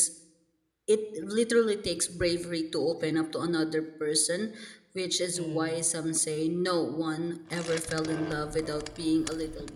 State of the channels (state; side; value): identical; both; correlation 1.00